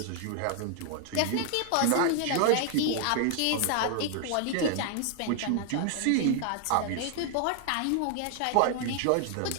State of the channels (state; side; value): different; both; correlation 0.00